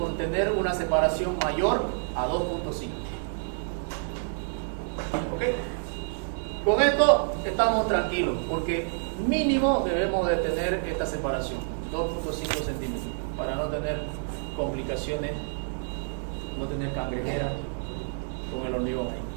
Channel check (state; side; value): silent; left; digital silence